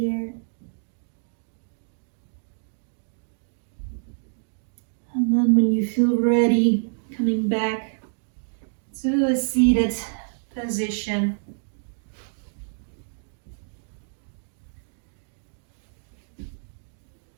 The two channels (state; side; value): silent; left; digital silence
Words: And then when you feel ready, coming back to a seated position.